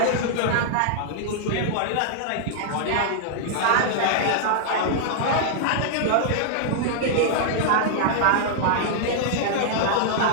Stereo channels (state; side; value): different; both; correlation -0.01